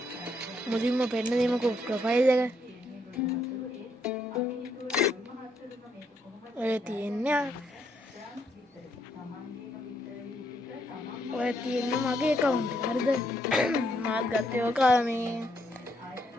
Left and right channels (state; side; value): normal; both; correlation 0.74